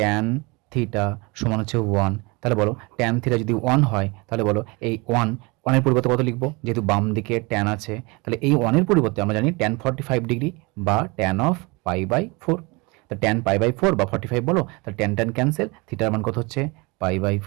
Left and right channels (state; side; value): quieter; left; 26.8 dB